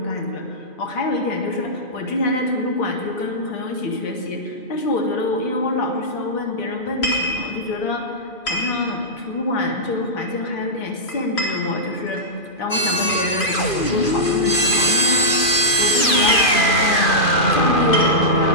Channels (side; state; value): right; late; 2.4 ms